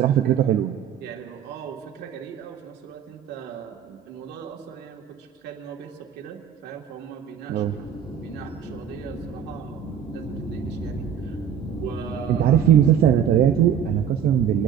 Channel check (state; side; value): quieter; left; 8.7 dB